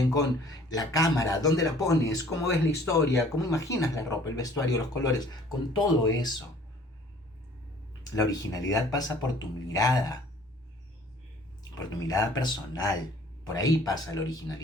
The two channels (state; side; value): normal; both; correlation 0.54